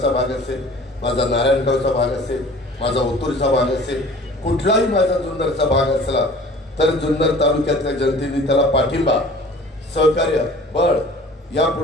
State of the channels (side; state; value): both; normal; correlation 0.46